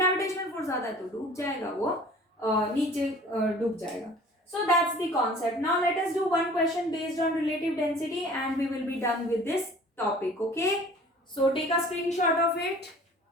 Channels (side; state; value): both; normal; correlation 0.47